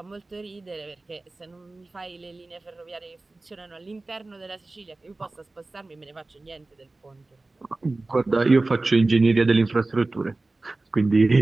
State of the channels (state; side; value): quieter; left; 3.2 dB